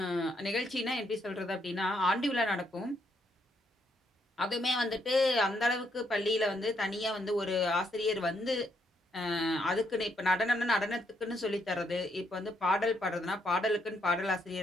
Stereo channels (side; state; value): both; normal; correlation 0.75